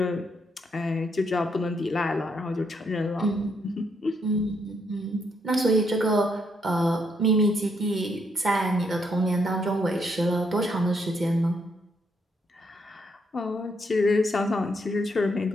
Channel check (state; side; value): normal; both; correlation 0.75